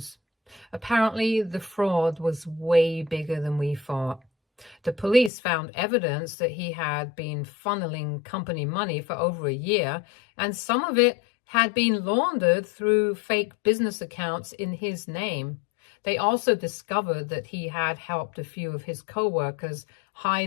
Apparently, the fraud was way bigger than we thought. The police found evidence that he had been funneling company money for over a year, and some of it had been laundered through fake business accounts in his name. They also discovered that he had helped a few of his co-workers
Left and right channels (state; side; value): drops out; right; at 5.3 s